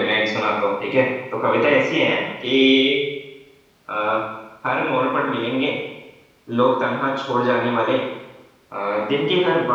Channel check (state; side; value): identical; both; correlation 1.00